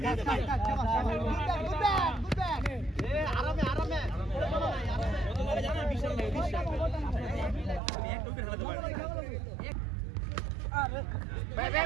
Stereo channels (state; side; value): drops out; left; at 7.8 s